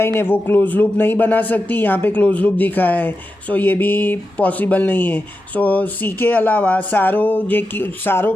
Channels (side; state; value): both; normal; correlation 0.90